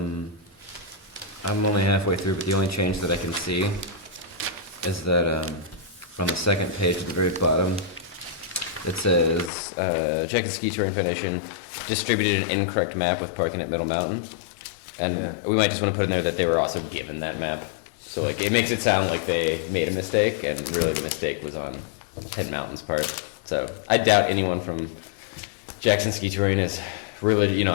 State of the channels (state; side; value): drops out; right; at 9.5 s